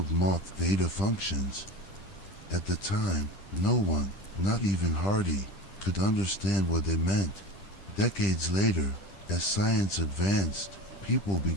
moth theta functions. At the time, no one, not even Hardy, could understand what they meant. Decades later, as science advanced, people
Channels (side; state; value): right; late; 10 ms